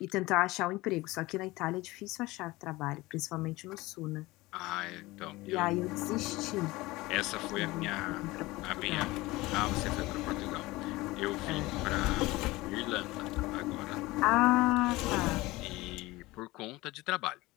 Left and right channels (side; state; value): right; quieter; 20.3 dB